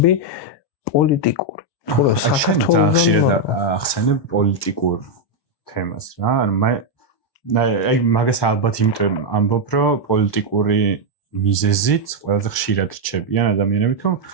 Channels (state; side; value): late; right; 1.2 ms